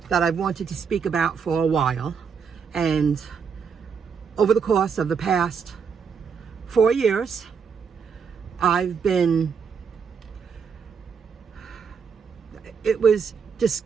that I've wanted to speak about for a while. And over the course of the past 4 years, it was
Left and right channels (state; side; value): quieter; left; 6.3 dB